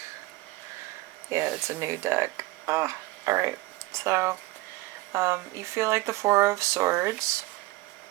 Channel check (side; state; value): left; quieter; 19.1 dB